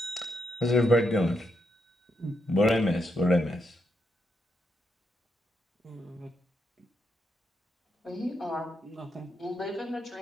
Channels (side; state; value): both; normal; correlation 0.81